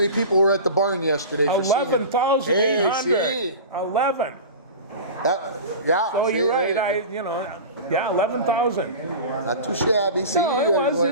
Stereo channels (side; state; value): both; inverted; correlation -0.32